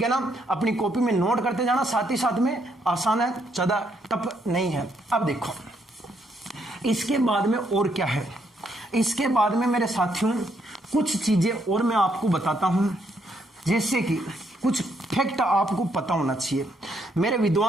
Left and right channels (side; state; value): both; normal; correlation 0.74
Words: है ना? अपनी कॉपी में नोट करते जाना, साथ ही साथ में आसान है, ज्यादा टफ नहीं है। अब देखो इसके बाद में और क्या है। इसके बाद में मेरे साथियों कुछ चीजें और मैं आपको बताता हूं, जैसे कि कुछ फैक्ट आपको पता होना चाहिए। मेरे